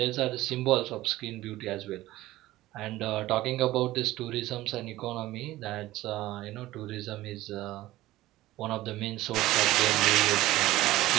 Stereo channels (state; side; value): quieter; left; 16.6 dB